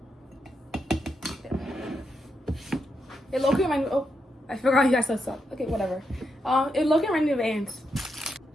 It low-key reminded me. Oh, I forgot you guys said stuff. Okay, whatever. It low-key reminded me of ants.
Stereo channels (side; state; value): both; normal; correlation 0.83